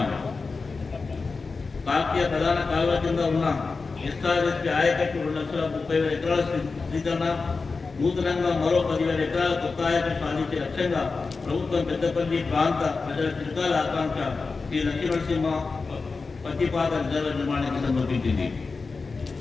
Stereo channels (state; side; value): quieter; right; 4.3 dB